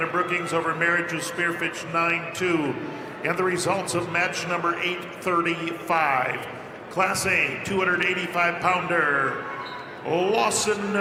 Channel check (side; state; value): both; identical; correlation 1.00